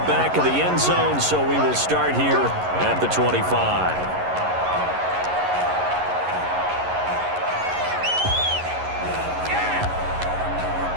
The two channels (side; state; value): left; late; 11 ms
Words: back of the end zone, so we will start here at the 25.